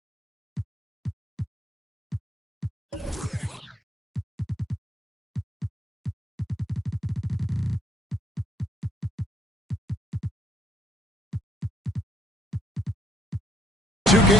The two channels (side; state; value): both; normal; correlation 0.68